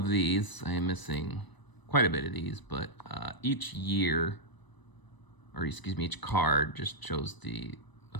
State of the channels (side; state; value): right; late; 1.0 ms